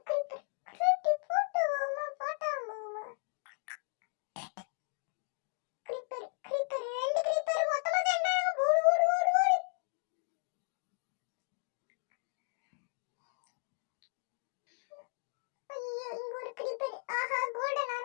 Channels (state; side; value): silent; right; digital silence